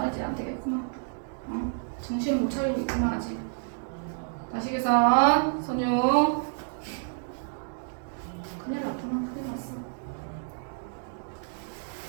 안 되겠구나. 정신을 못 차리고 있구나 아직. 다시 계산 선유. 큰일 났구나. 큰일 났어.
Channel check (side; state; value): left; silent; digital silence